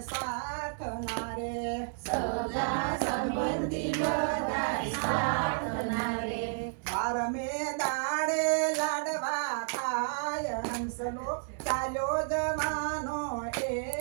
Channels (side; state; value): left; silent; digital silence